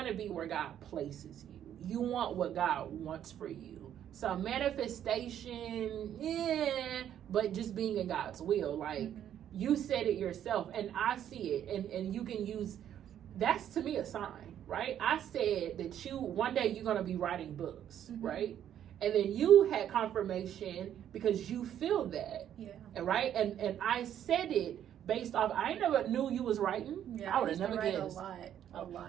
to be where God places you. You want what God wants for you. So manifestation, but just being in God's will. Like, you said it yourself, and I see it, and you can use, that's to me a sign, right? I said that one day you're going to be writing books, right? And then you had confirmation because you feel that, right? And I said it based off, I never knew you was writing. Yeah, I would have never guessed. A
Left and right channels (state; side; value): quieter; left; 10.3 dB